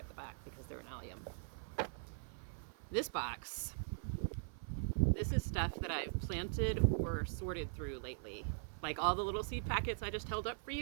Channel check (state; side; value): silent; left; 50 dB below the other